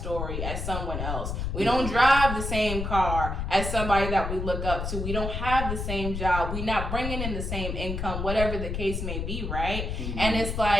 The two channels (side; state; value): left; noise; rumble, 3 dB below the sound